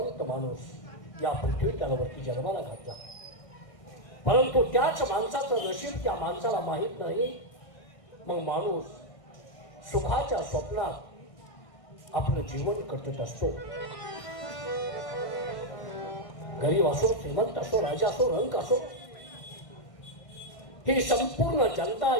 माणूस या पृथ्वी तलावरती जन्माला घातला. परंतु त्याच माणसाचं नशीब त्या माणसाला माहीत नाही. मग माणूस सुखाच्या स्वप्नात आपलं जीवन कटत असतो. गरीब असो, श्रीमंत असो, राजा असो, रंक असो, ही संपूर्ण जनता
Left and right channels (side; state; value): right; late; 1.6 ms